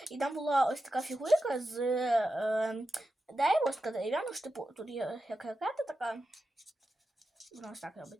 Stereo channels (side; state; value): both; normal; correlation 0.90